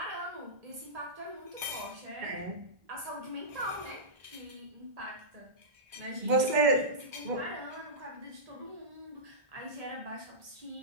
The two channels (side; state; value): left; late; 2.0 ms